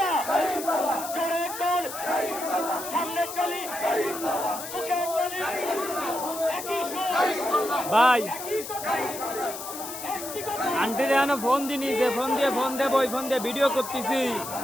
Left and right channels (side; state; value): left; noise; hiss, 9 dB below the sound